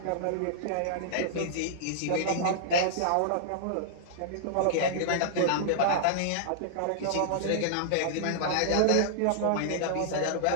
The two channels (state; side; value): different; both; correlation -0.01